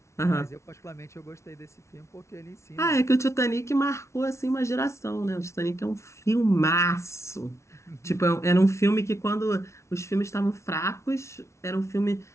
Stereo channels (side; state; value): right; late; 0.13 ms